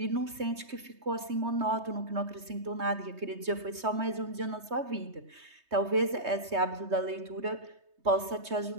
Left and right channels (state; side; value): late; left; 3.2 ms